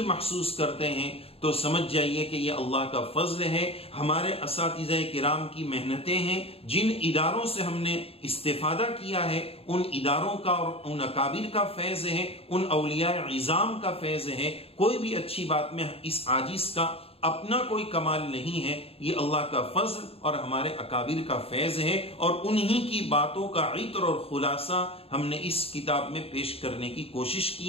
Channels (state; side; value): late; right; 0.28 ms